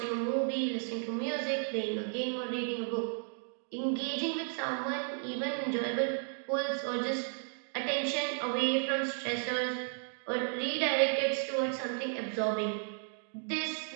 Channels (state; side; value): silent; left; 55 dB below the other